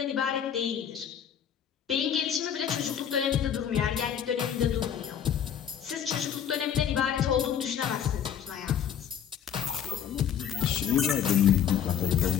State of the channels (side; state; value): right; quieter; 8.9 dB